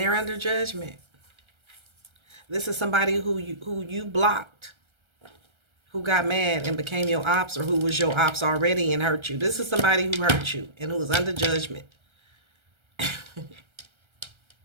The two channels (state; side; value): late; left; 1.3 ms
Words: under judgment. This is somebody who you blocked, who got mad and became your ops, or who was your ops already and hurt you. This is somebody who hurt you and who was under judgment.